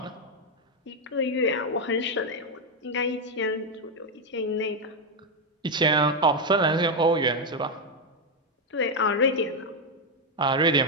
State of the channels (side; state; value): both; normal; correlation 0.04